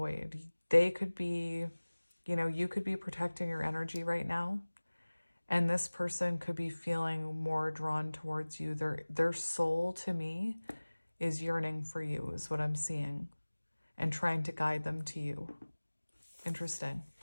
They could be, you could be protecting your energy right now. And this person could be feeling more drawn towards you. Their soul, to me, is yearning for you, is what I'm seeing, and trying to guide them to you. Interesting.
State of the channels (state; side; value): inverted; both; correlation -1.00